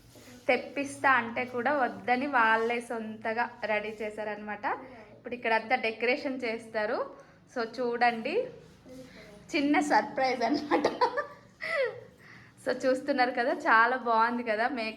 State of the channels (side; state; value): both; identical; correlation 1.00